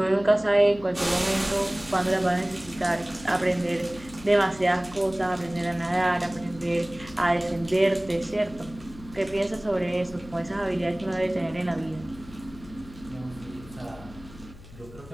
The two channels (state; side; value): noise; left; hum, 19 dB below the sound